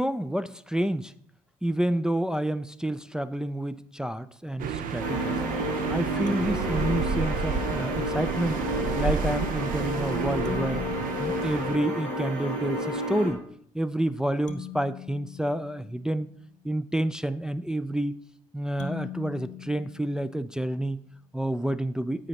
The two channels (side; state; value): both; normal; correlation 0.73